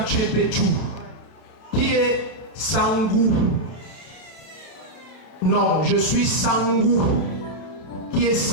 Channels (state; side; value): late; right; 31 ms